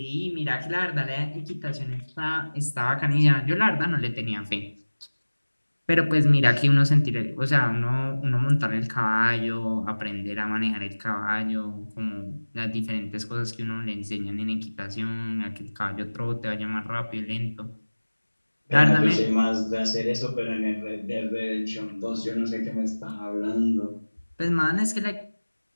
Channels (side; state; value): both; inverted; correlation -1.00